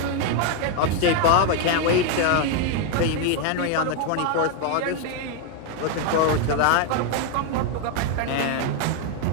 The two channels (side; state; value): both; different; correlation 0.01